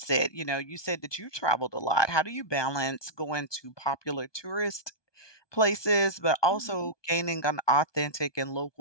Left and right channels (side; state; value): right; late; 1.2 ms